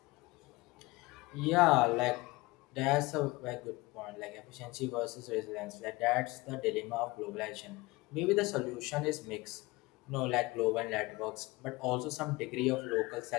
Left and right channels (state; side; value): quieter; right; 22.1 dB